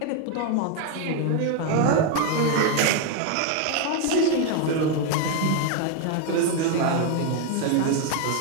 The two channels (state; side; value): different; both; correlation 0.01